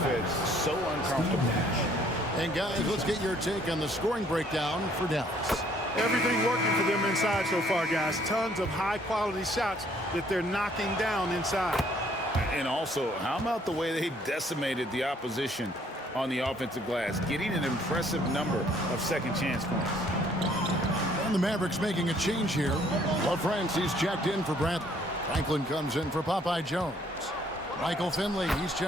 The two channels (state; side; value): normal; both; correlation 0.63